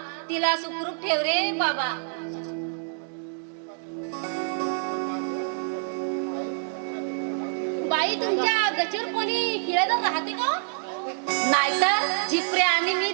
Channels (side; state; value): left; silent; 60 dB below the other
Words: तिला सुखरूप ठेव रे बाबा. बाई, तुमच्या गचीवर कोणी खेळत राहते का? नाहीतर झिपरे आणि मी